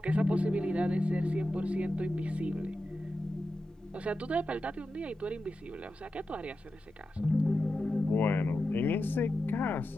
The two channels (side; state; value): both; normal; correlation 0.91